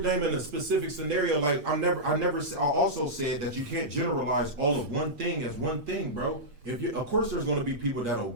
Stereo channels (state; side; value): late; left; 8.5 ms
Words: a specific scenario. Like I also said that you can't generalize all of one thing as one thing, bro. Of course, there's going to be people